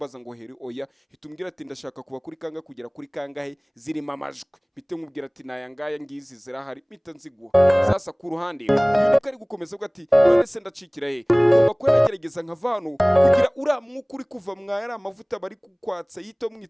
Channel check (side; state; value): both; identical; correlation 1.00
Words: ngo heri oya hitumbwira ati ndashaka kuba kuri kanga kugera kuri kangahe zirimo amajwi bite nkubwira ati nayangaya ngizi zirahari mpita nziguha. Sasa ku ruhande yuko ari gukomeza uvuga ati none se ndacikira he ngomba ko nagerageza nkavano kugira uramwuka uri kuva mwaya amavuta bari kukwatsa yito